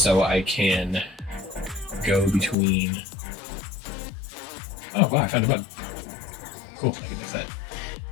I can go between. Oh wow, I found a bug. Cool, I can fix that.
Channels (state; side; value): drops out; right; at 2.6 s